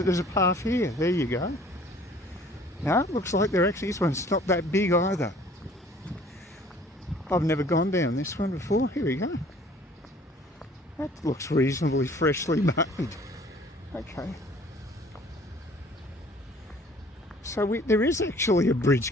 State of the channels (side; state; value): both; normal; correlation 0.53